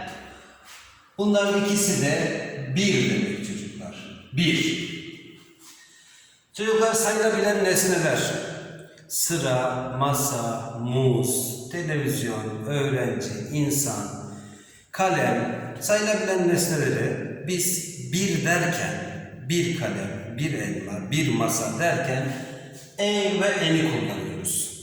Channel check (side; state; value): both; identical; correlation 1.00